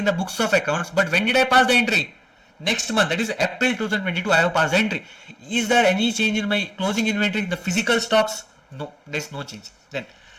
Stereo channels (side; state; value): both; identical; correlation 1.00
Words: the books of accounts. But when did I pass the entry? Next month, that is April 2022, I have passed the entry. Is there any change in my closing inventory, the physical stocks? No, there is no change. Then